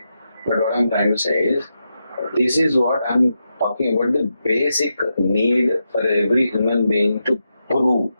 But what I'm trying to say is, this is what I'm talking about, the basic need for every human being to prove.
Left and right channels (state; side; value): inverted; both; correlation -0.86